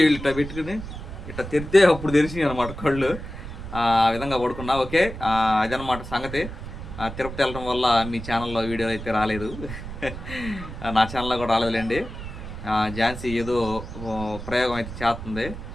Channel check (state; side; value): noise; right; rumble, 10 dB below the sound